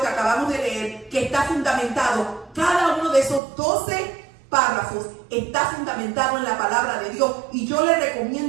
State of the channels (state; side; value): drops out; left; at 3.4 s